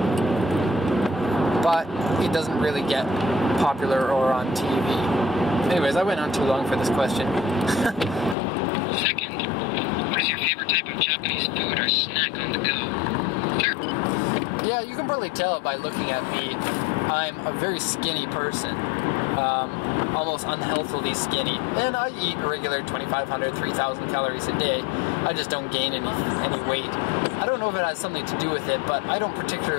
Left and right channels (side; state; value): right; drops out; at 8.3 s